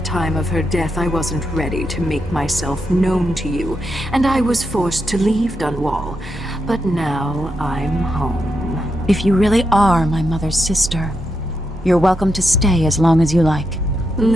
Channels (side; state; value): both; normal; correlation 0.84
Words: of her death, I wasn't ready to make myself known to you, and I was forced to leave Dunwall. But now I'm home. If you really are my mother's sister, you're welcome to stay as long as you like.